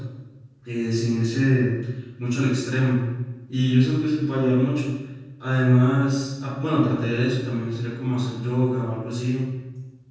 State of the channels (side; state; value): both; identical; correlation 1.00